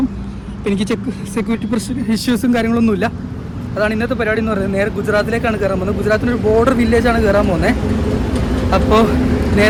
എനിക്ക് സെക്യൂരിറ്റി ഇഷ്യൂസും കാര്യങ്ങളൊന്നുമില്ല. അതാണ് ഇന്നത്തെ പരിപാടി എന്ന് പറയുന്നത്. നേരെ ഗുജറാത്തിലേക്കാണ് കയറാൻ പോകുന്നത്. ഗുജറാത്തിൻ്റെ ഒരു ബോർഡർ വില്ലേജാണ് കയറാൻ പോകുന്നത്. അപ്പോൾ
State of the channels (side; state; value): both; identical; correlation 1.00